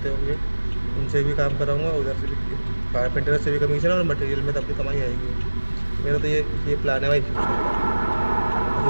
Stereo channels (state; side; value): inverted; both; correlation -1.00